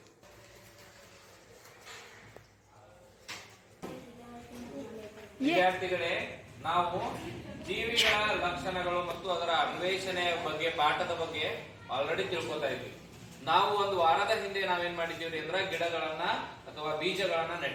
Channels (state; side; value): identical; both; correlation 1.00